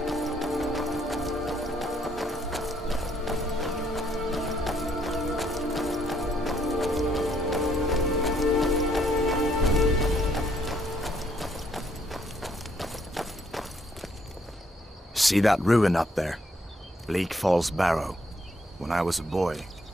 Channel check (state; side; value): normal; both; correlation 0.69